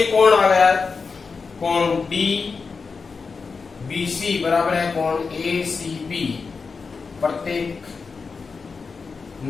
कोण आ गया, कोण डी बीसी बराबर है कोण ए सी बी प्रत्येक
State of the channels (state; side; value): quieter; right; 4.8 dB